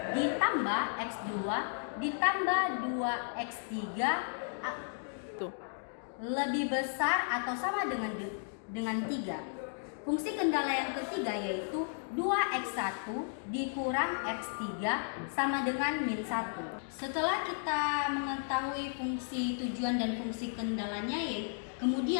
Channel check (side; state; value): right; silent; digital silence